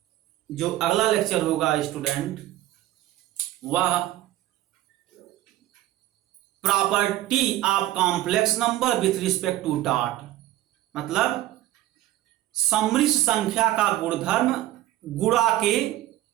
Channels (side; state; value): left; quieter; 14.8 dB